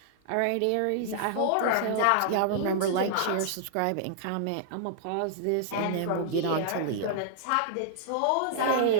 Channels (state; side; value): different; both; correlation -0.01